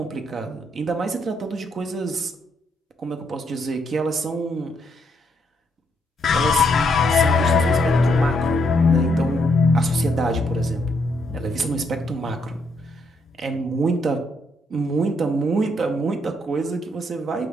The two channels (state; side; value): normal; both; correlation 0.75